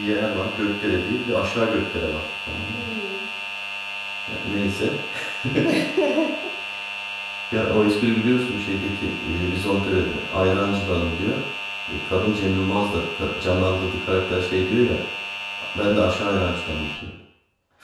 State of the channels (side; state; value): both; identical; correlation 1.00